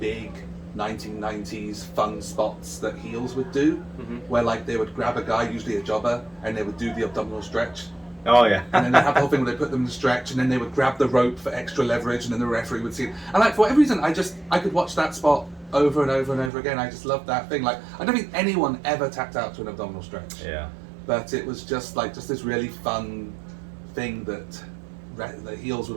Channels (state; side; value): drops out; left; at 16.5 s